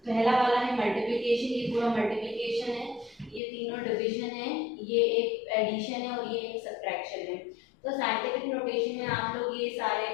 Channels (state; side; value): drops out; right; at 3.4 s